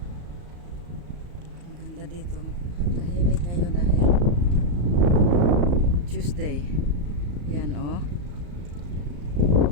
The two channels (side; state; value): left; late; 34 ms